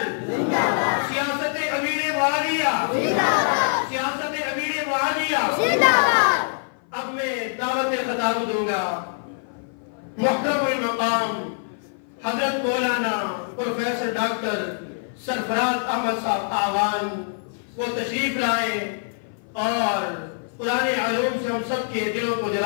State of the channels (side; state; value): right; silent; 56 dB below the other